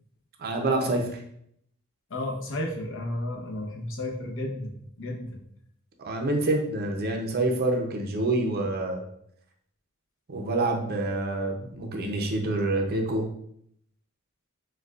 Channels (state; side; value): normal; both; correlation 0.26